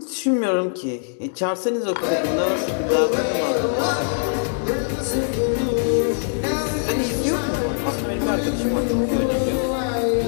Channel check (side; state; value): right; silent; digital silence